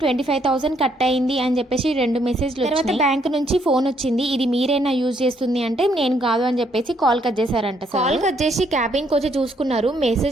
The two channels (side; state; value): both; normal; correlation 0.71